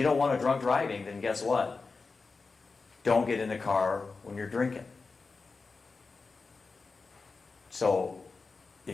don't want a drunk driving, then guess what? Don't get in the car when you're drinking. So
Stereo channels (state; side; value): quieter; right; 4.2 dB